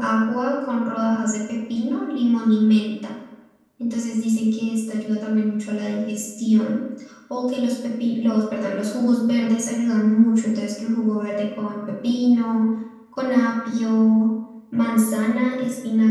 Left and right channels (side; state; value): both; identical; correlation 1.00